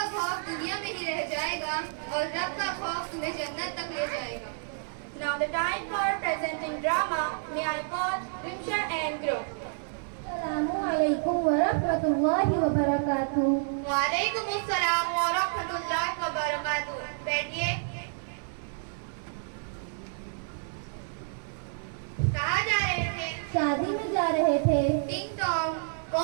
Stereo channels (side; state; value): left; silent; 58 dB below the other